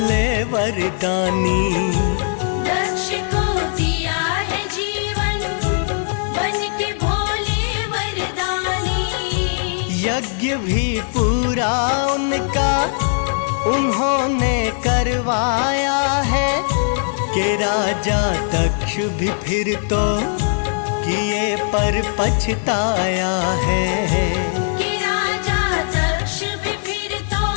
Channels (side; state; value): right; silent; digital silence